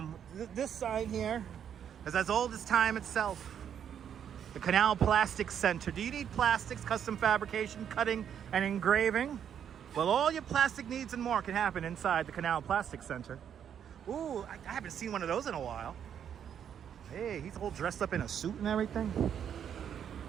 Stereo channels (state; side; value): quieter; left; 8.7 dB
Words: this sign here is as old as time itself. The Canal Plastics Center. Do you need plastics, custom fabrication, cutting, and engraving? Well, all your plastic needs and more can happen inside the Canal Plastics Center. Ooh, I haven't seen one of those in a while. Hey, he's all dressed up in a suit and everything.